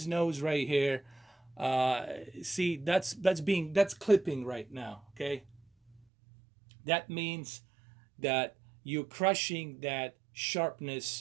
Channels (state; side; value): drops out; left; at 6.0 s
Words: nose right here. See, that's clipping right now. Okay, that means that you're crushing that